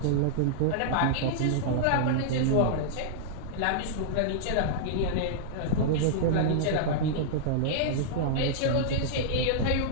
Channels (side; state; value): both; different; correlation -0.02